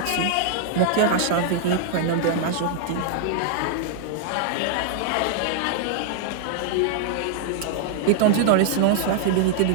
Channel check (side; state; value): both; different; correlation -0.01